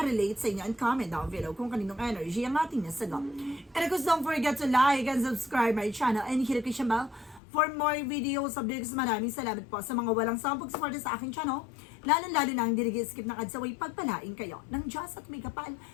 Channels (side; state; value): right; drops out; at 7.4 s